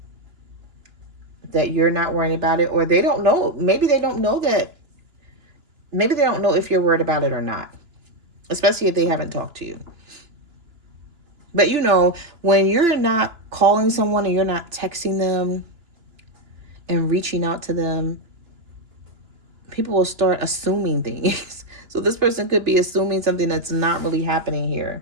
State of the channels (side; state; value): left; late; 2.9 ms